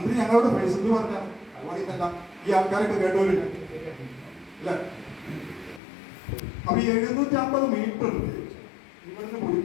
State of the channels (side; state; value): right; drops out; at 5.8 s